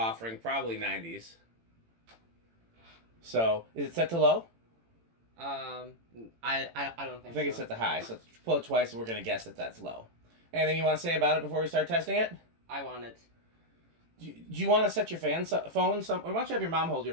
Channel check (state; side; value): late; left; 18 ms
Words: probably 90s. So, is it set to low? I don't think so. I think it's set to high, so let's pull it twice and we're going to guess that that's low. Anything you want to say about it before we start testing it? I want it. Do you want to set your phone or why don't you have your mom hold